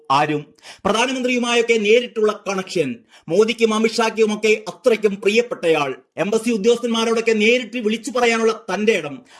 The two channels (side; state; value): both; identical; correlation 1.00